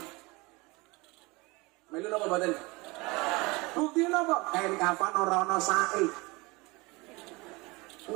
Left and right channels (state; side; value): quieter; left; 24.7 dB